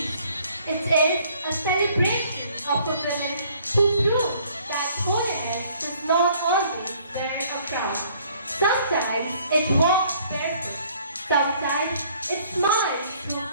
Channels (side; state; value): both; inverted; correlation -0.60